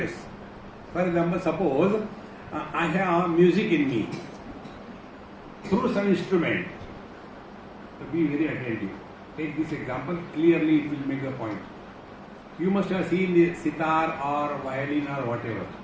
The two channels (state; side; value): identical; both; correlation 1.00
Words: For example, suppose I have music in me through some instrument. So be very attentive. Take this example, clearly it will make the point. You must have seen the sitar or violin or whatever.